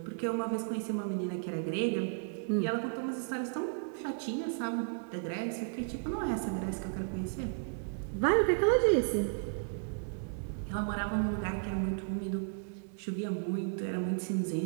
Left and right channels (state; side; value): silent; left; digital silence